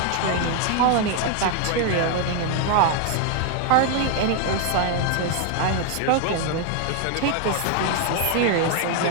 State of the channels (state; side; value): different; both; correlation 0.00